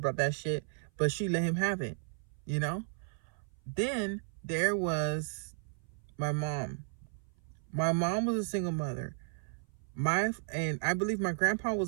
that shit, but she let him have it, Then there was my mom. My mom was a single mother. And I believe my grandpa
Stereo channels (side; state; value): left; silent; 55 dB below the other